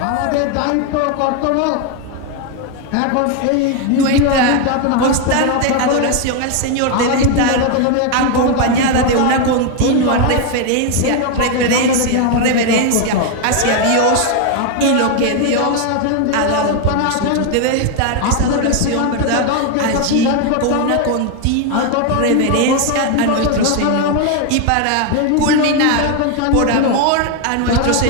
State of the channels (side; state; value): both; different; correlation 0.01